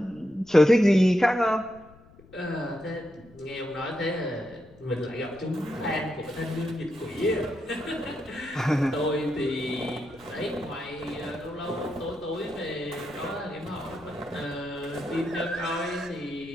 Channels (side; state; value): left; noise; rumble, 24 dB below the sound